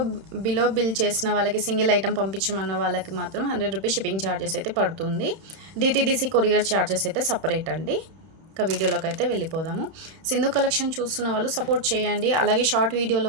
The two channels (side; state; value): left; late; 31 ms